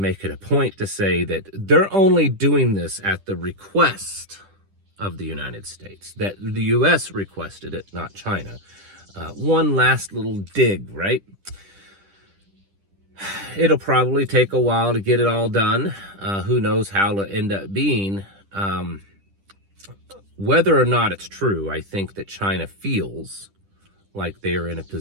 it a point to say that they're only doing this at the request of the United States, that the U.S. requested it, not China. One last little dig, right? It'll probably take a while to get it all done. Who knows how it'll end up being. Whether or not it's true, I think that China feels like they are in a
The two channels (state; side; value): late; left; 10 ms